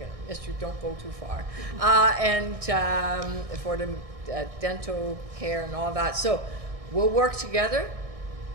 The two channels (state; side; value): late; left; 1.6 ms